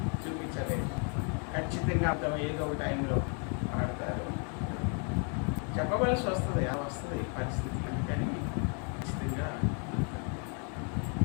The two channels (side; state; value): right; quieter; 39.5 dB